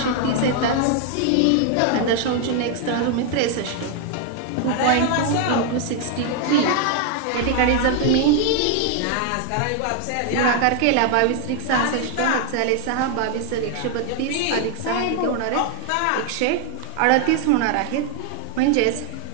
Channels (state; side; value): different; both; correlation 0.01